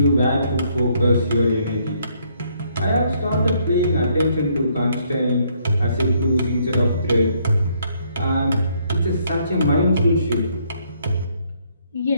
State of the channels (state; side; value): inverted; both; correlation -0.69